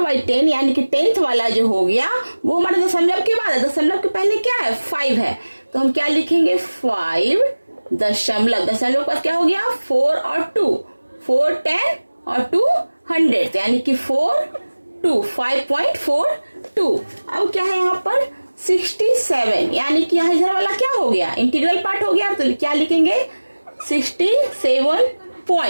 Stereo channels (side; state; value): both; inverted; correlation -1.00